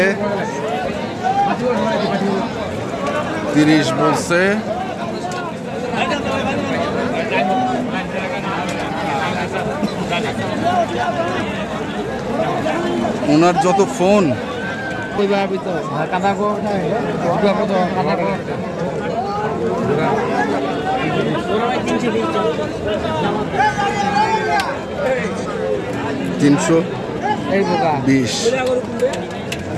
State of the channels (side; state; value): both; identical; correlation 1.00